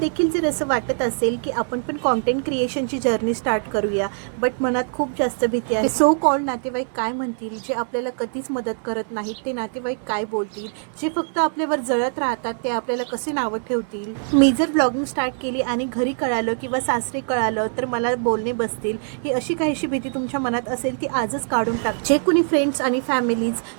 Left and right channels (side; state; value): left; silent; 64 dB below the other